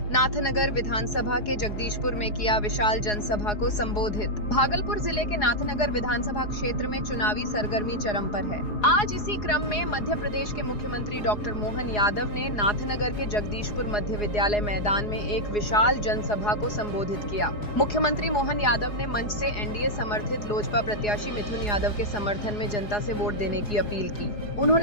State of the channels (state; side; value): late; right; 4.8 ms